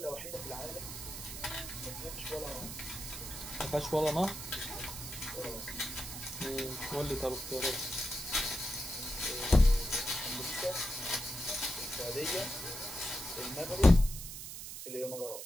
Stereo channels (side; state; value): right; noise; hiss, 9 dB below the sound